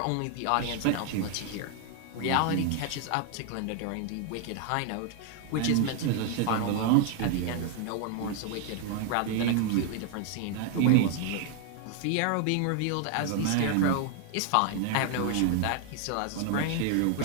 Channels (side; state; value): both; different; correlation 0.00